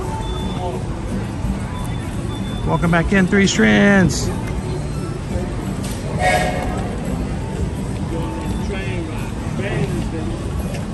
Welcome back in, Three Strands.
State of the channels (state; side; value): identical; both; correlation 1.00